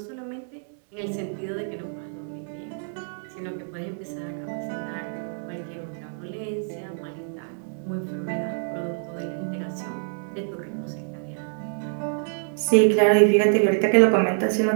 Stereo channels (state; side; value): silent; left; digital silence